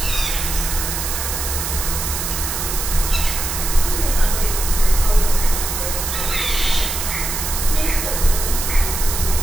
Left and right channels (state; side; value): noise; right; hiss, 3 dB below the sound